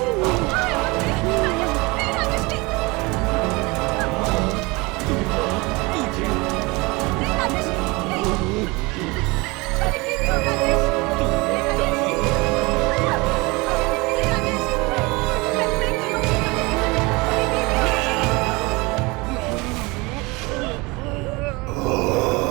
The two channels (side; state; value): left; quieter; 25.0 dB